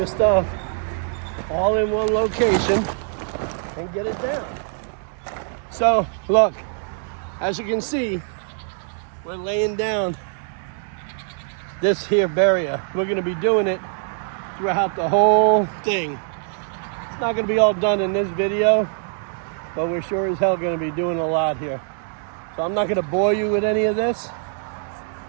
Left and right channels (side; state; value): left; silent; digital silence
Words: stuff all in one location and get it down. So, look, as you can see, we're laying down this here barrier. We're going to be doing it throughout the whole thing. It's not going to be all done in this video, but we're sure as hell going to be doing a lot here. So I'm not going to bore you with any of this.